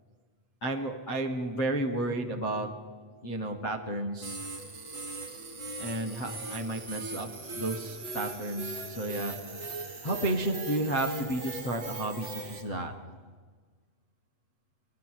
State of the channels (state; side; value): late; right; 8.3 ms